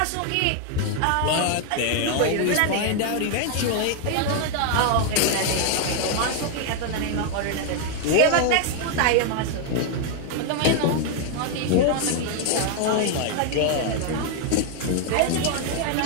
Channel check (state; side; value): different; both; correlation 0.00